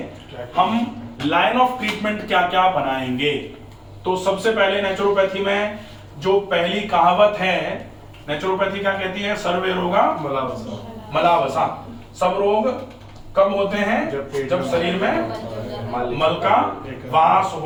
हम लाइन ऑफ ट्रीटमेंट क्या क्या बनाएंगे। तो सबसे पहले नेचुरोपैथी में जो पहली कहावत है, नेचुरोपैथी क्या कहती है, सर्वे रोगा मलावसा। सब रोग कब होते हैं, जब शरीर में मल का वास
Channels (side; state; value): both; identical; correlation 1.00